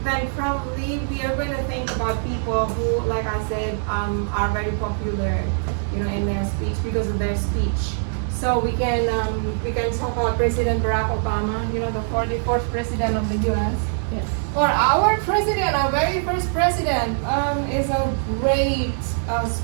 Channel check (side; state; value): left; silent; digital silence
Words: then probably we are going to think about people who, like I said, are very popular, in their speech because of their speech. So we can talk about President Barack Obama, the 44th president of the U.S. Yes. Or our president, our very first president, is a great